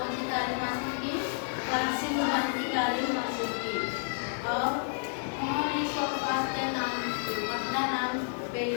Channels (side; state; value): right; silent; 57 dB below the other